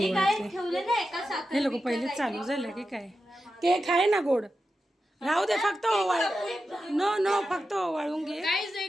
काय ओवाळते. ठेवलं ना एका साखर. हे लोक पहिले चालू झालं की काय? केक आहे ना गोड, राहू दे. फक्त ओवाळ. नो फक्त ओवाळून घे. गाइस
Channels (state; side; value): normal; both; correlation 0.91